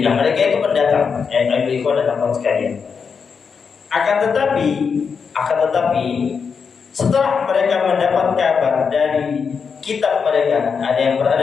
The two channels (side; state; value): right; quieter; 5.9 dB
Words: Mereka itu pendatang, ikhwan dan akhwat sekalian. Akan tetapi setelah mereka mendapat kabar dari kitab mereka, ada yang